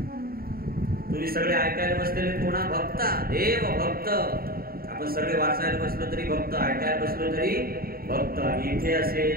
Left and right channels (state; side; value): late; left; 0.43 ms